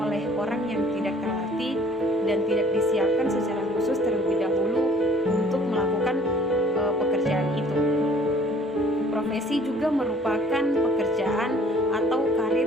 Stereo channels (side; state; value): both; normal; correlation 0.55